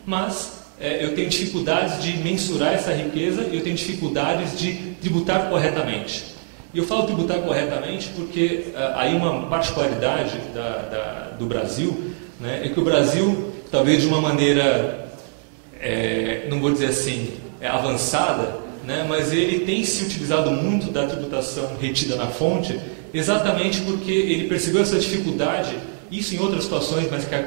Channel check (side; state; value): left; silent; 60 dB below the other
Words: mas eu tenho dificuldades de mensurar essa riqueza e eu tenho dificuldades de tributar corretamente. E eu falo tributar corretamente porque aí uma particularidade do Brasil, né, é que o Brasil, talvez de uma maneira, não vou dizer assim, avançada, né, mas ele tem se utilizado muito da tributação retida na fonte, exatamente porque ele percebeu essa dificuldade, isso em outras situações, mas que